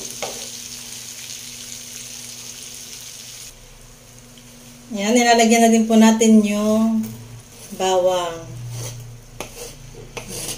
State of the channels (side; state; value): both; identical; correlation 1.00